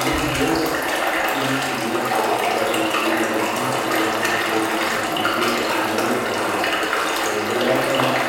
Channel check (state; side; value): identical; both; correlation 1.00